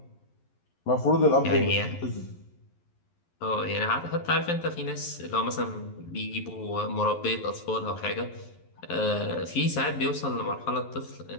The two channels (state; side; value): late; right; 11 ms